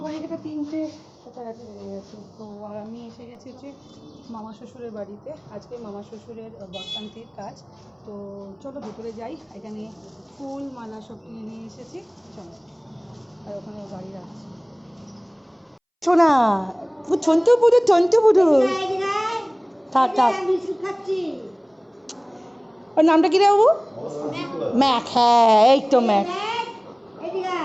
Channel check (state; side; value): identical; both; correlation 1.00